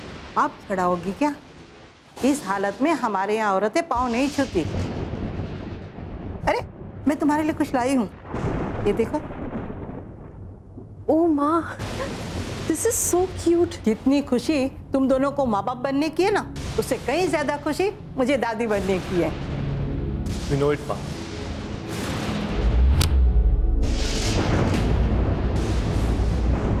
आप खड़ा होगी क्या? इस हालत में हमारे यहाँ औरतें पाँव नहीं छूती। अरे मैं तुम्हारे लिए कुछ लाई हूँ, ये देखो। ओ माँ, दिस इज सो क्यूट। जितनी खुशी तुम दोनों को माँ बाप बनने की है ना, उससे कहीं ज्यादा खुशी मुझे दादी बनने की है। We know it, माँ।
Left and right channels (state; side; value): identical; both; correlation 1.00